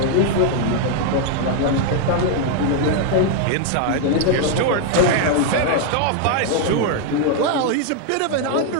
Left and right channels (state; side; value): different; both; correlation 0.00